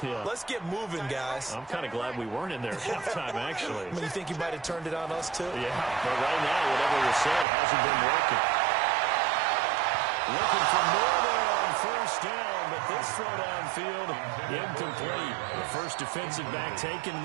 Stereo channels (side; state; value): left; drops out; at 7.5 s